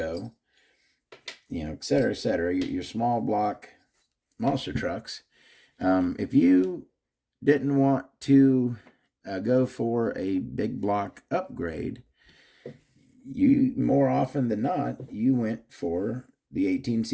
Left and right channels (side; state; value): both; identical; correlation 1.00